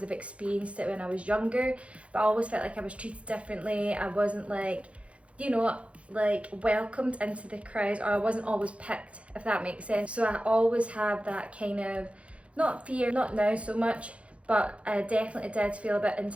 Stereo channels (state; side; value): late; left; 0.062 ms